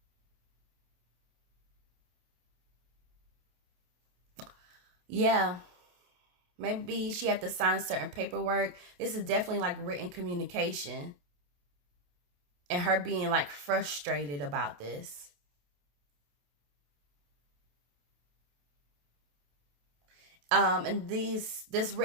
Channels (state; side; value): late; left; 28 ms